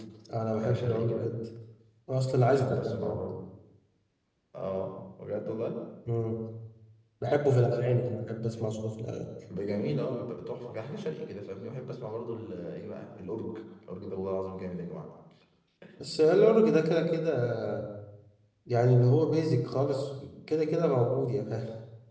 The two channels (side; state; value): both; identical; correlation 1.00